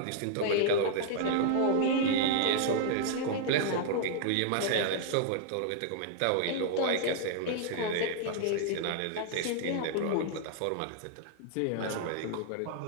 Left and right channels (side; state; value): both; different; correlation -0.01